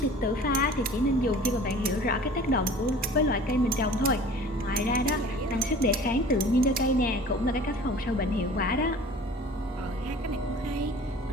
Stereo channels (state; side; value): normal; both; correlation 0.44